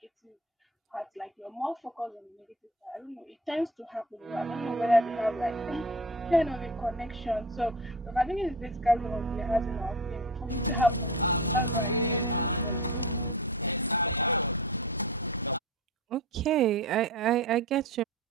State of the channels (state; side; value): normal; both; correlation 0.32